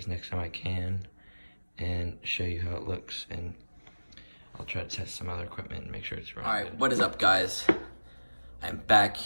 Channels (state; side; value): inverted; both; correlation -1.00